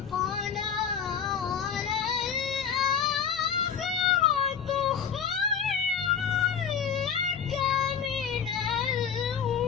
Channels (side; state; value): right; quieter; 7.4 dB